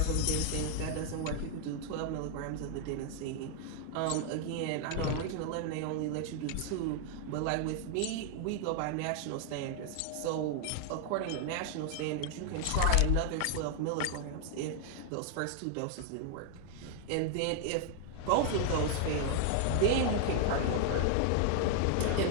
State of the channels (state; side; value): different; both; correlation 0.00